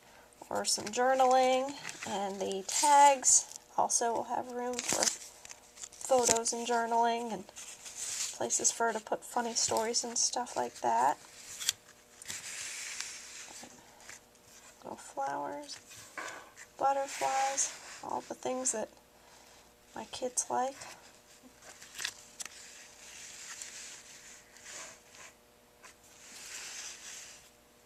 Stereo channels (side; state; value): both; identical; correlation 1.00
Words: or some journaling, and the tags also will have room for photos and journaling and places for her to put funny stories and stuff like that. Little flowers, butterflies, all the things that my kids like.